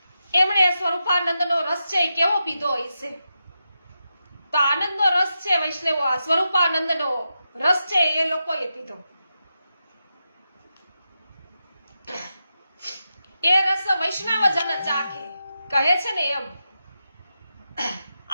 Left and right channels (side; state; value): both; inverted; correlation -0.88